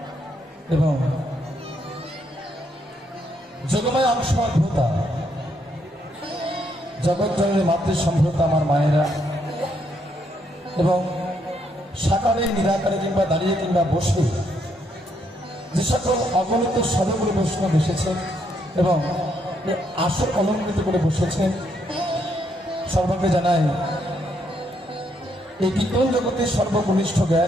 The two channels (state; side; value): normal; both; correlation 0.74